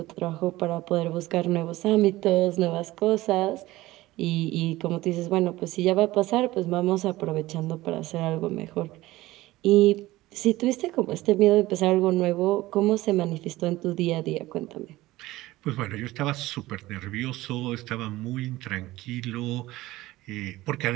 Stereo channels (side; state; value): left; quieter; 17.8 dB